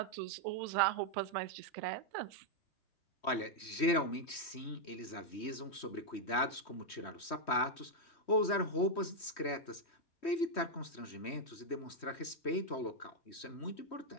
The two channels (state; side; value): late; right; 3.1 ms